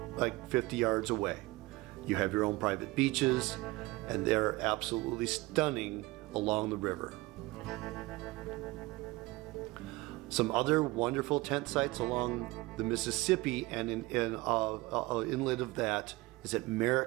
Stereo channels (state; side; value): quieter; left; 21.5 dB